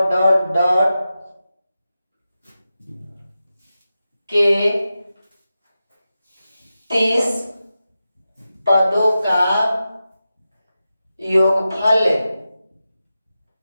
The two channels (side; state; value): both; inverted; correlation -0.92